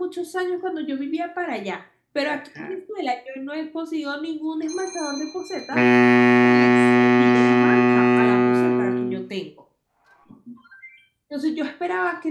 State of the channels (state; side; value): identical; both; correlation 1.00